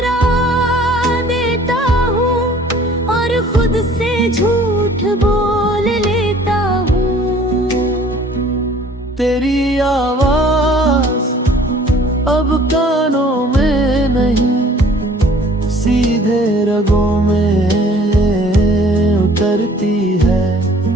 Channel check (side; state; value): both; normal; correlation 0.53